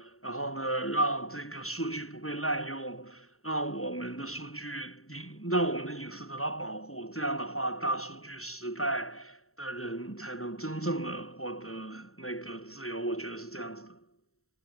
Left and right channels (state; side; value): late; right; 0.63 ms